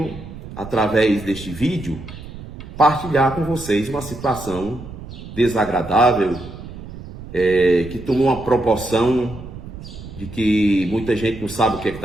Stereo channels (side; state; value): right; noise; rumble, 13 dB below the sound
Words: através deste vídeo, partilhar com vocês uma situação desagradável que tomou uma proporção de que muita gente não sabe o que